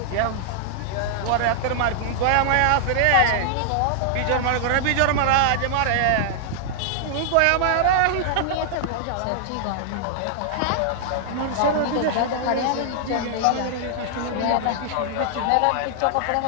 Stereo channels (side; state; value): both; different; correlation -0.01